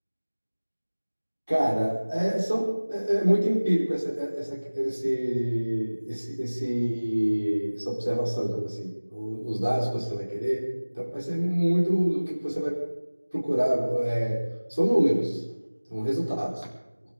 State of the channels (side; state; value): both; inverted; correlation -1.00